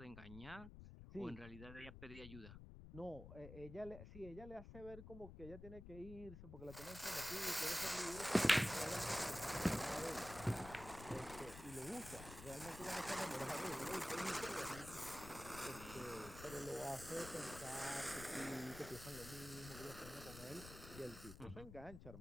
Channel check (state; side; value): noise; left; rumble, 12 dB below the sound